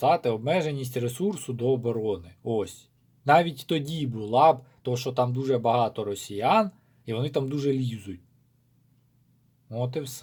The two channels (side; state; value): both; identical; correlation 1.00